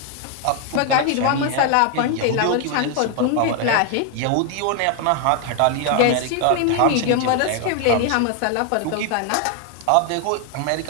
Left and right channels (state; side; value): different; both; correlation 0.01